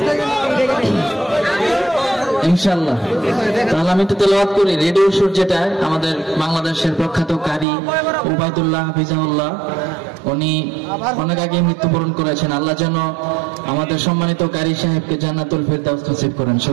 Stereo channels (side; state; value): left; drops out; at 7.7 s